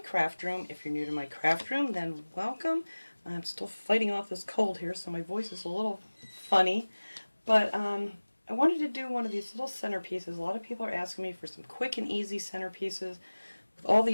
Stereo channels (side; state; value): both; inverted; correlation -1.00